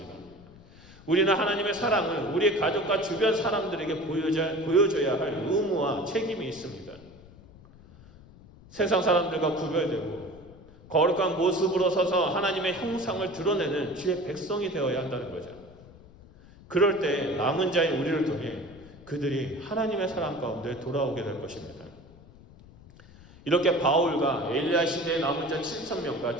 우리는 하나님의 사랑을 우리 가족과 주변 사람들에게 보여줘야 할 의무와 책임이 있습니다. 세상 사람들과 구별되고 거룩한 모습으로 서서 하나님의 형상을 드러내는 주의 백성이 되어야 한다는 거죠. 그럴 때 남은 자인 우리를 통해 그들이 하나님의 사랑 가운데 돌아오게 될 것입니다. 이렇게 바울과 엘리야 시대의 남은 자 7,000명과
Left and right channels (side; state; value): left; noise; rumble, 22 dB below the sound